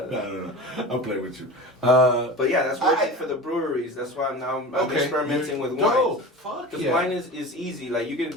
I'm playing with you. But yeah, that's working for the breweries. That's why I'm experimenting with wine. No, fuck Because yeah. wine is easy. Like you can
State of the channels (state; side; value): normal; both; correlation 0.33